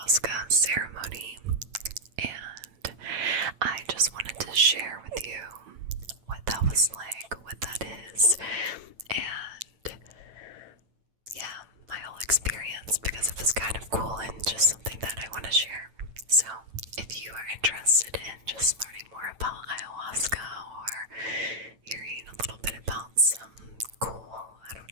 ceremony, and I just wanted to share with you what that was like, what that is, and yeah, my whole experience, because it was kind of cool and just something that I want to share. So if you are interested in just learning more about ayahuasca or hearing a little bit about some cool, I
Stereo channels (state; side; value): late; left; 8.9 ms